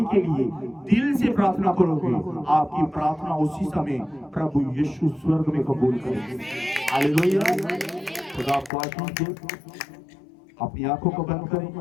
के लिए दिल से प्रार्थना करोगे, आपकी प्रार्थना उसी समय प्रभु यीशु स्वर्ग में कबूल करेंगे। हालेलुया। खुदा आपको आशीष दे। अपनी आंखों को बंद करें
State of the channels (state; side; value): drops out; right; at 8.7 s